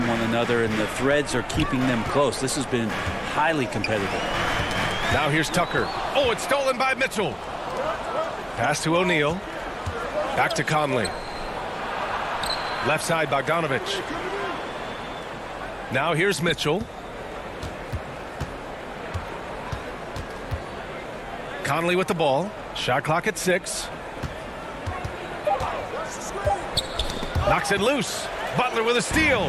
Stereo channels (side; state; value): both; identical; correlation 1.00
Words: one another, and the threads are keeping them close. This has been highly competitive. Now here's Tucker. Oh, it's stolen by Mitchell. Pass to O'Neal. Back to Conley. Left side, Bogdanovich. Now here's Mitchell. Conley with the ball. Shot clock at 6. Knocks it loose. Butler with a steal.